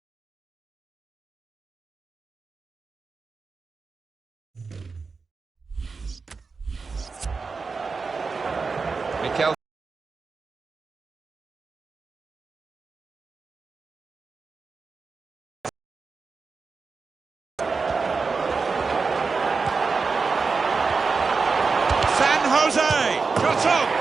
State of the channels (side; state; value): left; quieter; 4.6 dB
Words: Mikel. San Jose, shot on.